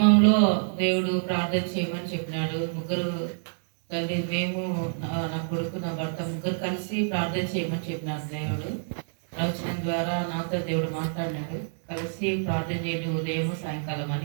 దేవుడు ప్రార్థన చేయమని చెప్పినాడు. ముగ్గురు తల్లి, మేము, నా కొడుకు, నా భర్త ముగ్గురు కలిసి ప్రార్థన చేయమని చెప్పినాడు దేవుడు. ప్రవచనం ద్వారా నాతో దేవుడు మాట్లాడినాడు. కలిసి ప్రార్థన చేయండి ఉదయం సాయంకాలం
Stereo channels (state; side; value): silent; left; 60 dB below the other